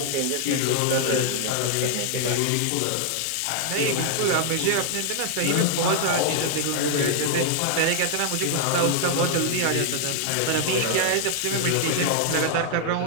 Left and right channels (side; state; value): both; different; correlation 0.00